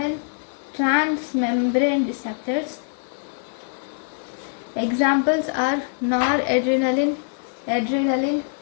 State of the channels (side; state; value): right; silent; digital silence